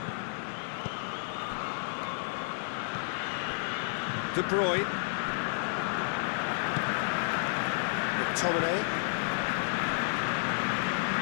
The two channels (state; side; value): silent; right; 57 dB below the other